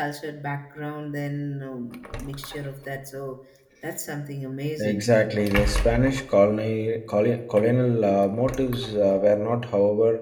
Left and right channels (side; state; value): both; identical; correlation 1.00